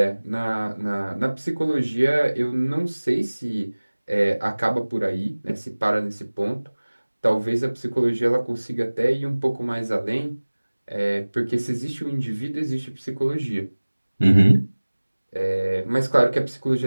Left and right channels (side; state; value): both; inverted; correlation -1.00